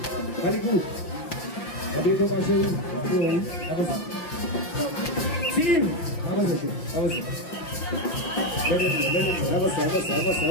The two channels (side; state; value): right; late; 5.7 ms